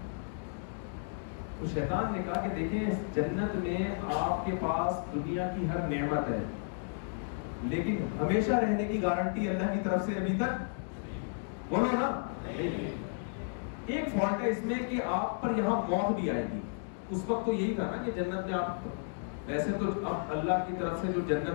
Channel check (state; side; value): silent; right; digital silence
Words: تو شیطان نے کہا کہ دیکھیں جنت میں آپ کے پاس دنیا کی ہر نعمت ہے، لیکن ہمیشہ رہنے کی گارنٹی اللہ کی طرف سے ابھی تک، بولو نا، ایک فالٹ ہے اس میں کہ آپ پر یہاں موت بھی آئے گی۔ اس وقت تو یہی تھا نا کہ جنت میں آپ، ویسے تو اب اللہ کی طرف سے جو